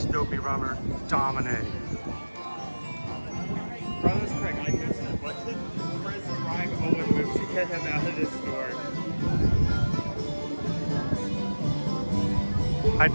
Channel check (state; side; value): inverted; both; correlation -1.00